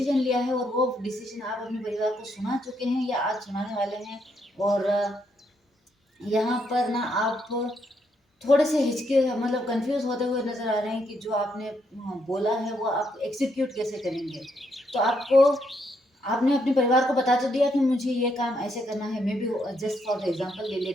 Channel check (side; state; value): both; normal; correlation 0.76